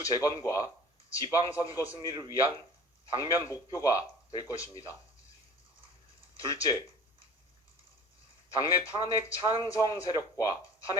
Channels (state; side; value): normal; both; correlation 0.43